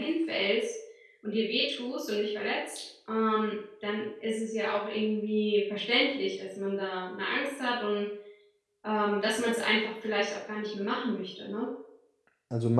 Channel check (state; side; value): identical; both; correlation 1.00